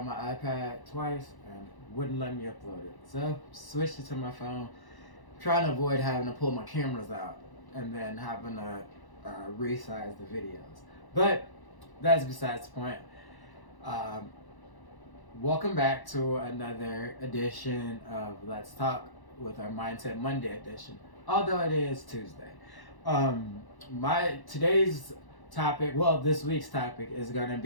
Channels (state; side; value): late; right; 1.0 ms